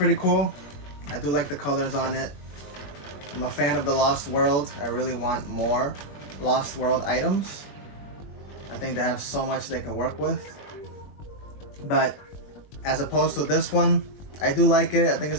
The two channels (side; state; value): right; late; 21 ms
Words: cool. I do like the colors on it. I'm a fan of the Lost World. I really want more Lost World items. I think they have so much they can work with. But as opposed to this one, I do like it. I think